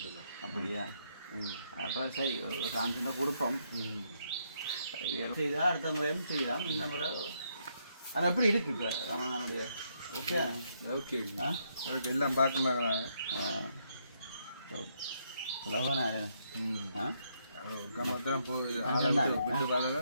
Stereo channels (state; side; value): inverted; both; correlation -0.75